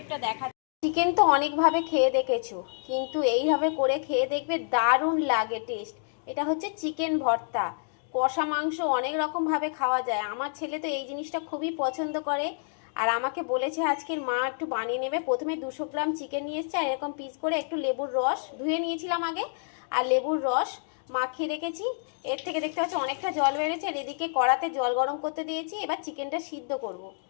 দেখাচ্ছি। চিকেন তো অনেকভাবে খেয়ে দেখেছো, কিন্তু এইভাবে করে খেয়ে দেখবে, দারুণ লাগে টেস্ট। এটা হচ্ছে চিকেন ভর্তা। কষা মাংস অনেক রকমভাবে খাওয়া যায়, আমার ছেলে তো এই জিনিসটা খুবই পছন্দ করে। আর আমাকে বলেছে আজকের মা একটু বানিয়ে নেবে। প্রথমে 200 গ্রাম চিকেন নিয়ে এসছে, আর এরকম পিস করে একটু লেবুর রস ধুয়ে নিয়েছিলাম আগে, আর লেবুর রস মাখিয়ে রেখেছি। এর থেকে দেখতে পাচ্ছি অনেকটা জল বেড়েছে। আর এদিকে কড়াতে জল গরম করতে দিয়েছি, এবার চিকেনটা সিদ্ধ করব।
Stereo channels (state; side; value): silent; right; digital silence